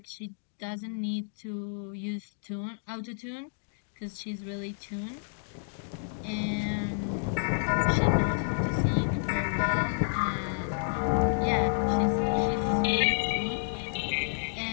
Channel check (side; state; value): right; silent; digital silence